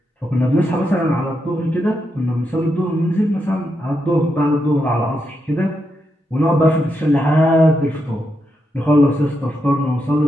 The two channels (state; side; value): normal; both; correlation 0.83